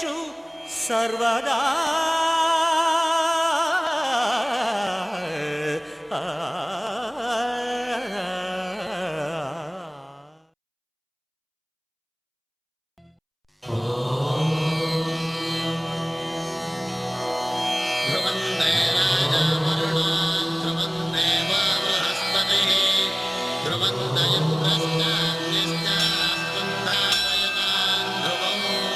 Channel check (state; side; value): identical; both; correlation 1.00